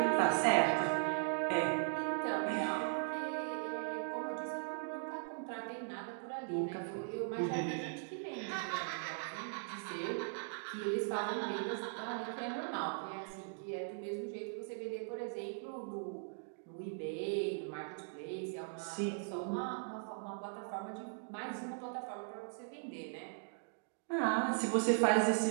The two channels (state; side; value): silent; left; digital silence